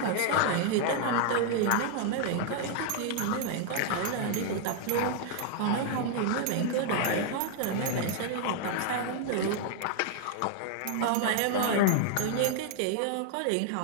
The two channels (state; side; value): different; both; correlation 0.00